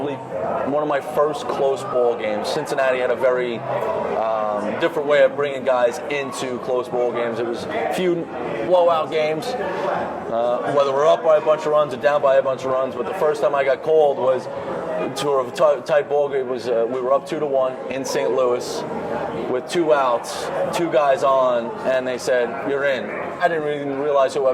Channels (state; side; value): identical; both; correlation 1.00